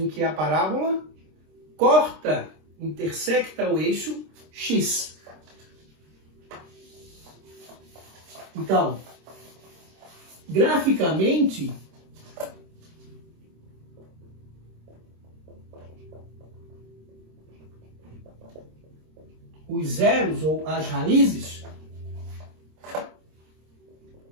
que a parábola corta, intersecta o eixo x. Então, graficamente, os zeros ou as raízes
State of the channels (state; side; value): late; left; 26 ms